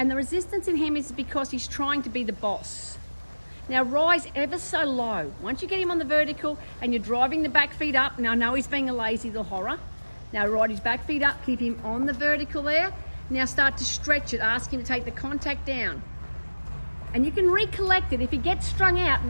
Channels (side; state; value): both; inverted; correlation -1.00